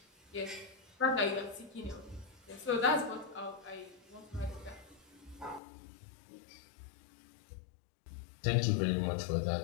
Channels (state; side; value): drops out; right; at 5.6 s